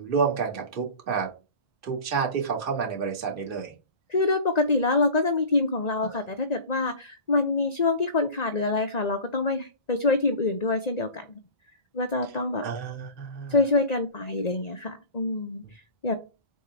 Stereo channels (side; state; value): right; late; 1.9 ms